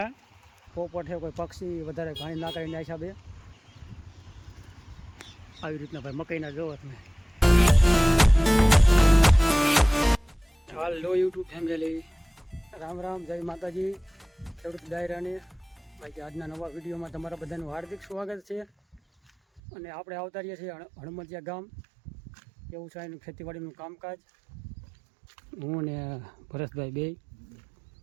પોપટ છે, કોઈ પક્ષી વધારે ઘાણી ના કરીને હિસાબે આવી રીતના ભાઈ મકાઈના જોવો તમે. હાલો યુટ્યુબ ફેમિલી, રામ રામ, જય માતાજી. ખેડૂત ડાયરાને ભાઈ આજના નવા વિડીયોમાં તમારા બધાનું હાર્દિક સ્વાગત છે. અને આપણે આવતા રહીએ છીએ હણમતિયા ગામ. એવું છે એનું ખેતીવાડીનું કામકાજ. હું ને ભરતભાઈ બે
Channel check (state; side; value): drops out; left; at 19.6 s